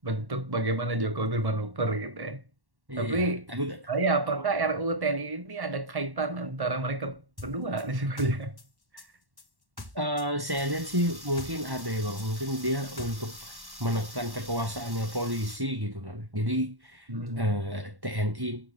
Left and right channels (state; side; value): late; left; 1.1 ms